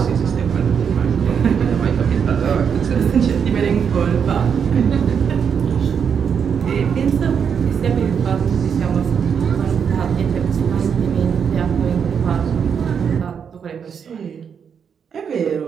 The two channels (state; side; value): quieter; left; 7.1 dB